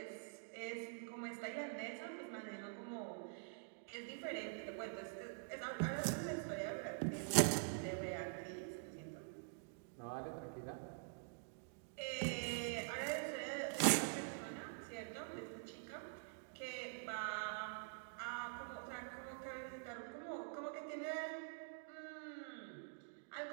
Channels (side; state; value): left; silent; digital silence